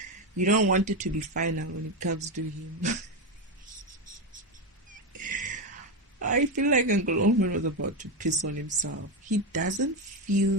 You don't want it to be final when it comes to him. I feel like Uncle Omen was about to piss on himself. He doesn't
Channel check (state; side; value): normal; both; correlation 0.11